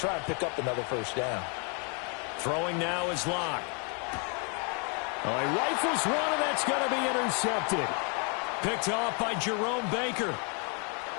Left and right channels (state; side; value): quieter; right; 36.9 dB